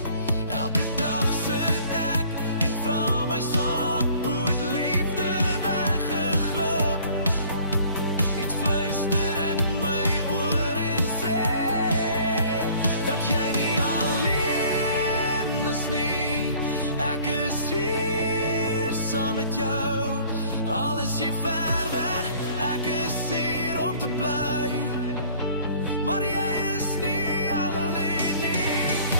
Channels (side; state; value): both; inverted; correlation -0.53